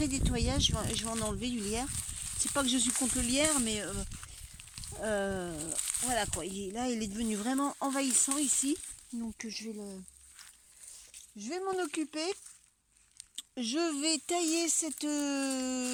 nettoyage. Je vais en enlever du lierre. C'est pas que je suis contre le lierre, mais voilà quoi. Là, il est devenu vraiment envahissant ici. Donc je vais m'en occuper. Je vais tailler cette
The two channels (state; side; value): identical; both; correlation 1.00